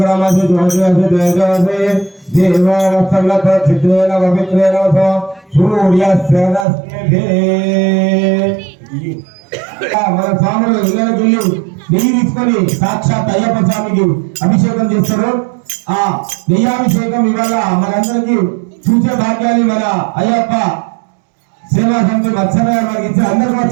जोजसि तेजसि దేవవత్సలత చిత్రేణ పవిత్రేణ సూర్యస్య రశ్మిభిః. మన స్వాములు ఇళ్ళకి నెయ్యి తీసుకొని సాక్షాత్ అయ్యప్ప స్వామికి అభిషేకం చేస్తారు. ఆ నెయ్యాభిషేకం ఇవాళ మనందరికీ చూసే భాగ్యాన్ని మన అయ్యప్ప సేవా సమితి మత్సరగా మనకి ఇచ్చి అందరూ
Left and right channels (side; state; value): left; drops out; at 6.7 s